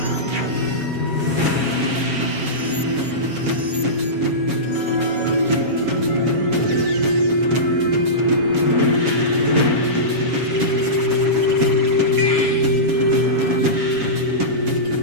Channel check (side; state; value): left; late; 7.3 ms